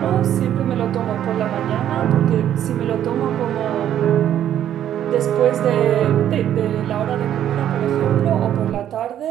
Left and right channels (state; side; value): quieter; left; 10.8 dB